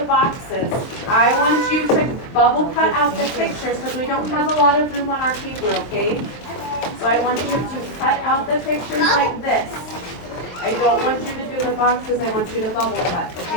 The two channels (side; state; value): right; late; 23 ms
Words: boxes. I want you to bubble cut out the pictures because we don't have a lot of room on our paper, okay? So I want you to cut out the pictures like this. I don't want you to do the boxes, I want you to bubble cut,